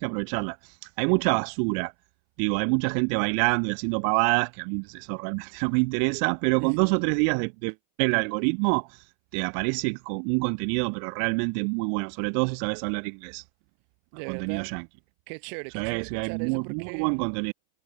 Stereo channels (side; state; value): left; silent; 61 dB below the other